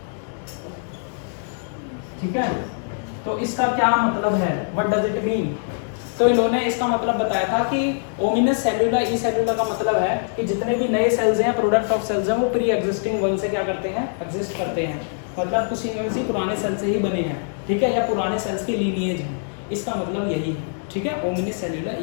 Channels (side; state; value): right; silent; digital silence